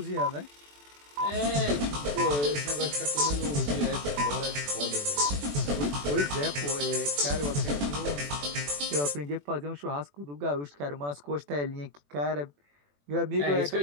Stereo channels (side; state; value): left; late; 21 ms